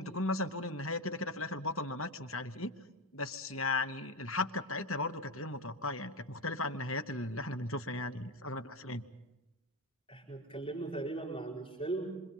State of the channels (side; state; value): both; normal; correlation 0.17